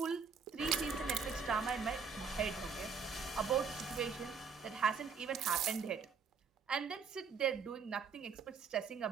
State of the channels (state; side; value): quieter; left; 5.7 dB